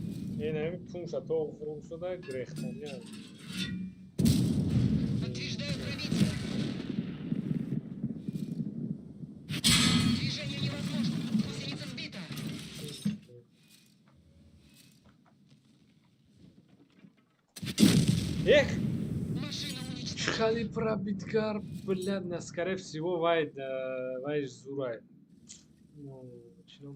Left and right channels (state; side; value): identical; both; correlation 1.00